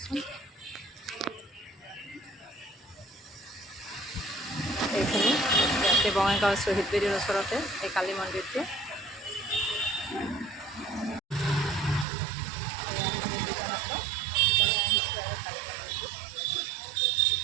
এইখিনি ইয়াতে বঙাইগাঁও শ্বহীদ বেদীৰ ওচৰতে এই কালী মন্দিৰটো। আমি দুজন আছোঁ, দুজনে আহিছোঁ আৰু কালী মন্দিৰটো।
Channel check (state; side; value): drops out; left; at 12.1 s